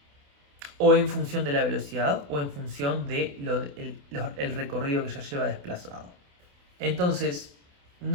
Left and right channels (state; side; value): late; left; 28 ms